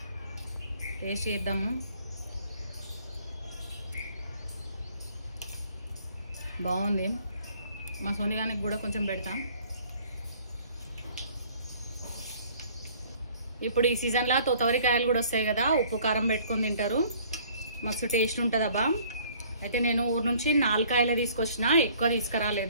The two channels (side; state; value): both; inverted; correlation -0.55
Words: టేస్ట్ చేద్దాము. బాగుంది. మా సోనిగానికి కూడా కొంచెం పెడతాం. ఇప్పుడు ఈ సీజన్లో తోతవరికాయలు కూడా వస్తాయి కదా, ఉప్పు కారం పెట్టుకొని తింటారు, మస్తు టేస్ట్ ఉంటుంది అబ్బా. అయితే నేను ఊరు నుంచి 4 కాయలు తీసుకొచ్చిన, ఎక్కువ